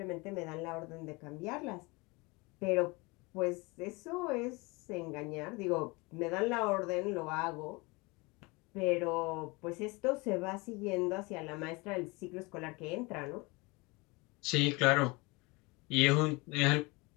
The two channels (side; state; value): right; quieter; 25.8 dB